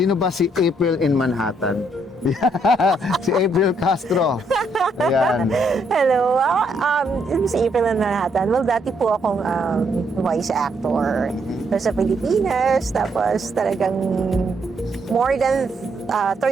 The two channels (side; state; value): both; normal; correlation 0.73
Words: ba si April in Manhattan? Si April Castro. Ayan. Hello. Si April na Manhattan. Well, dati po akong voice actor sa Pilipinas. Tapos talagang more than